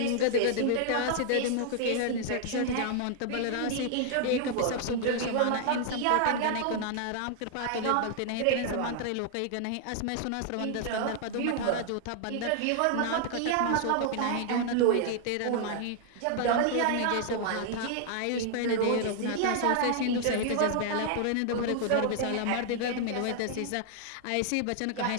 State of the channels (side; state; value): both; different; correlation 0.00